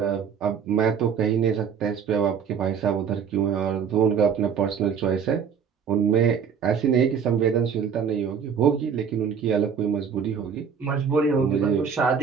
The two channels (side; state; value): left; quieter; 7.0 dB